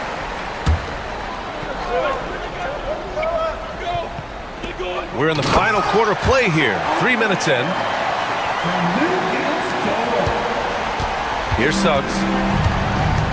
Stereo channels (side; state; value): both; identical; correlation 1.00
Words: We're in the final quarter play here. 3 minutes in. Here's Suggs.